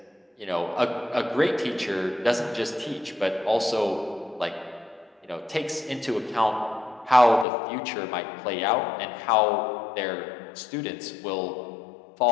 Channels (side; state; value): right; drops out; at 7.5 s